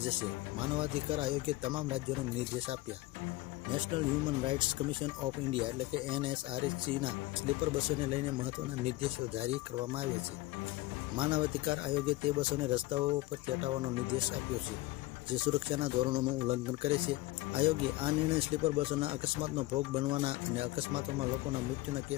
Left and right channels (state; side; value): quieter; right; 18.4 dB